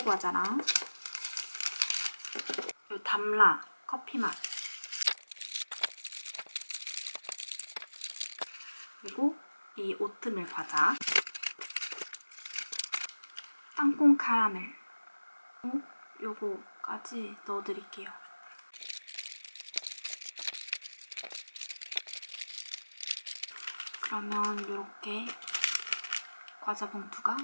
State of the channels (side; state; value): both; inverted; correlation -1.00